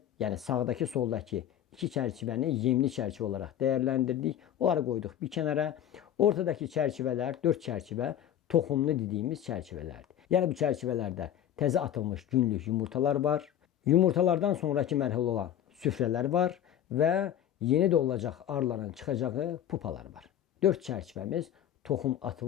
yəni sağdakı, soldakı 2 çərçivəni yemli çərçivə olaraq dəyərləndirdik. Onları qoyduq bir kənara. Ortadakı çərçivələr, 4 çərçivə toxumlu dediyimiz çərçivələrdir. Yəni bu çərçivələrdə təzə atılmış günlük yumurtalar var. Yumurtalardan sonraki mərhələ olan süfrələr var və yeni doğulacaq arıların çıxacağı pupalar var. 4 çərçivəmiz toxum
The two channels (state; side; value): quieter; right; 10.6 dB